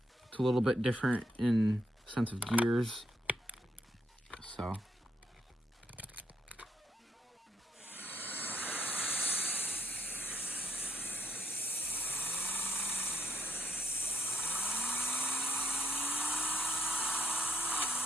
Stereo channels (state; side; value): normal; both; correlation 0.66